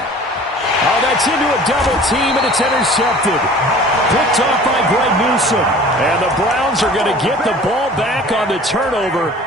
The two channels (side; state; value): both; normal; correlation 0.45